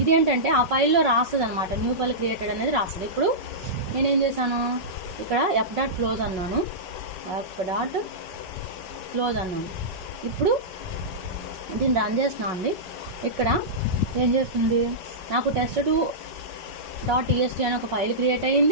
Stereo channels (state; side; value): late; left; 5.4 ms